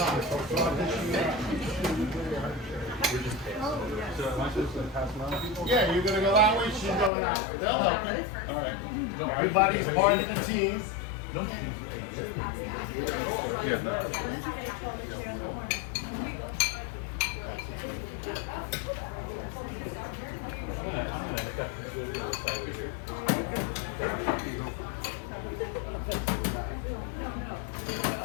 So it's not dishing it out. Yeah, you're gonna go that way, she's going that way. They'll help you. All right. Everybody's part of the team.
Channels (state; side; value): drops out; right; at 7.1 s